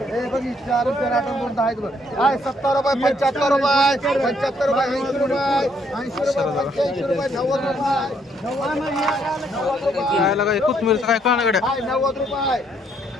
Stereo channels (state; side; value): normal; both; correlation 0.70